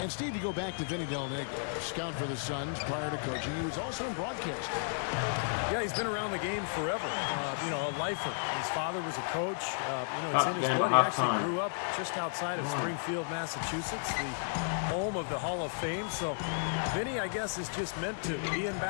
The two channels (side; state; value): right; silent; 56 dB below the other